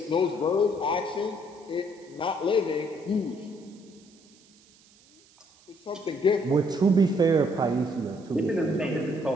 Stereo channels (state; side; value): noise; right; hiss, 28 dB below the sound